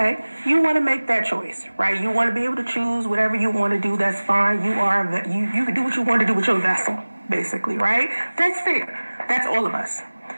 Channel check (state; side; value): inverted; both; correlation -1.00